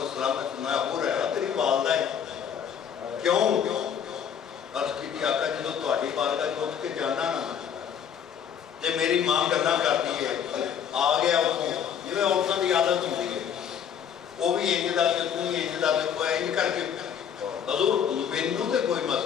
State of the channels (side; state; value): right; quieter; 8.3 dB